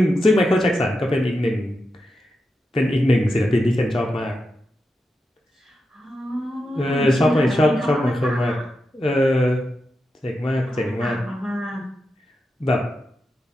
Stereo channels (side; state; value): both; normal; correlation 0.88